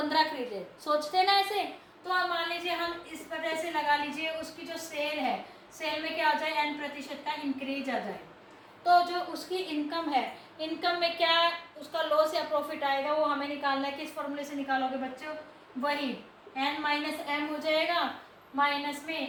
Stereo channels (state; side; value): identical; both; correlation 1.00